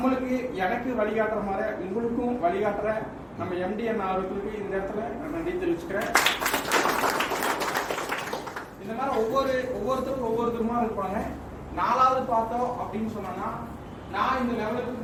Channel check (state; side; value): identical; both; correlation 1.00